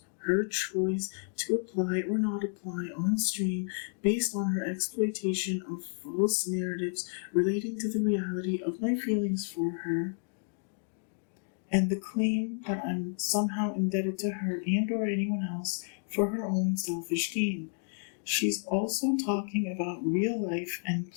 her choice to apply or not apply on stream based on her exploitation of false narratives relating to the reality of my feelings for her, and the claim that I'm somehow indebted to her and or anyone else for her own selfish gain. She's also talking about real life and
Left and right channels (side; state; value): right; silent; 57 dB below the other